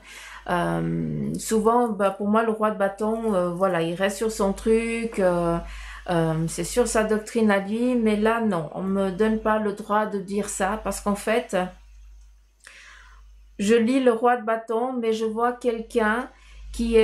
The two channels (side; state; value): both; identical; correlation 1.00